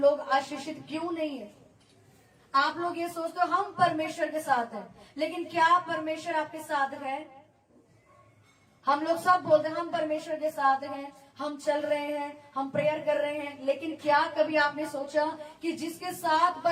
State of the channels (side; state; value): both; identical; correlation 1.00